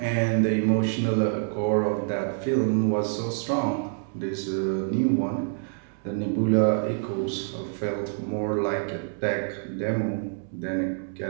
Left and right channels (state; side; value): silent; left; digital silence